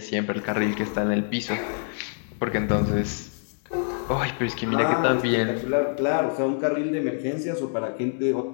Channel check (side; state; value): right; silent; digital silence